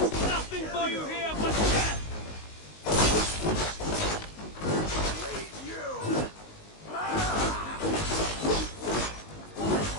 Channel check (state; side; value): late; right; 19 ms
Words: is nothing for you here but death!